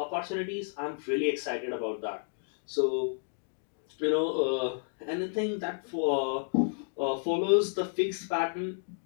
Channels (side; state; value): right; silent; digital silence